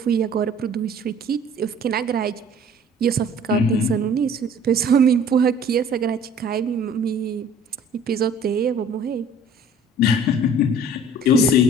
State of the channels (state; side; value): normal; both; correlation 0.50